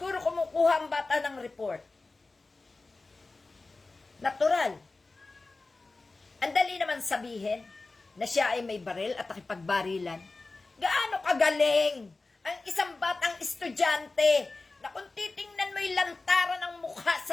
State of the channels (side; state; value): right; quieter; 3.5 dB